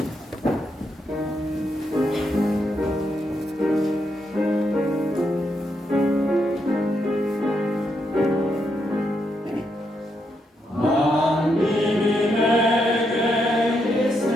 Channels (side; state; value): both; normal; correlation 0.80